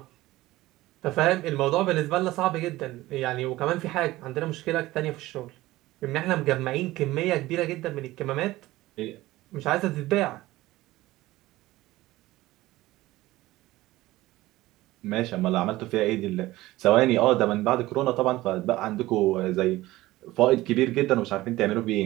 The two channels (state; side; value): quieter; left; 17.6 dB